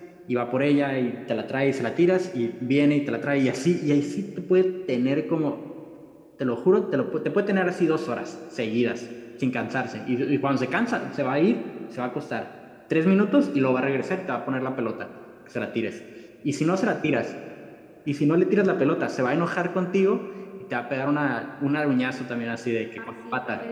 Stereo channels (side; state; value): both; identical; correlation 1.00